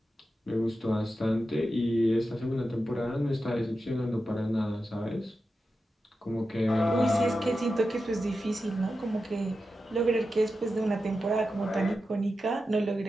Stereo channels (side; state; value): both; normal; correlation 0.91